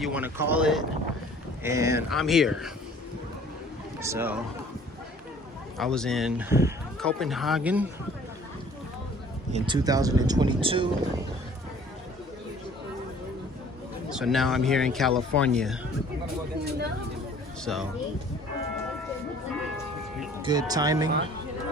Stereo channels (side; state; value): both; normal; correlation 0.52